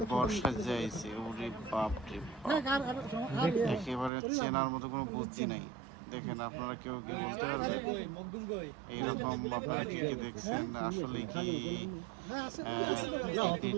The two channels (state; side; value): drops out; left; at 4.1 s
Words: বর্ষা যাইছে। ওরে বাপ রে বাপ, একেবারে চেনার মতো কোনো বুদ্ধি নাই। দেখেন, আপনারা কেউ কি বলতে পারবেন এইরকম? আপনারা কে কে দেখছেন? আসলে কি